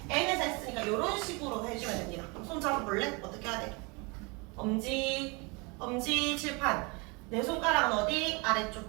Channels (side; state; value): left; quieter; 28.8 dB